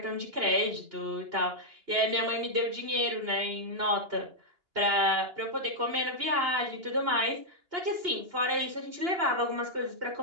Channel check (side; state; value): left; late; 2.8 ms